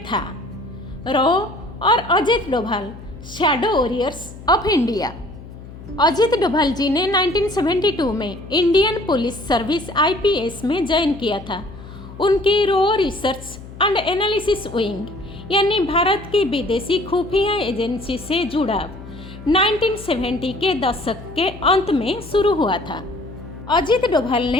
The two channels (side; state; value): left; noise; hum, 15 dB below the sound